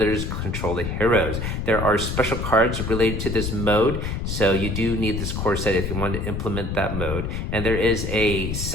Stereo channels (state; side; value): noise; left; rumble, 3 dB below the sound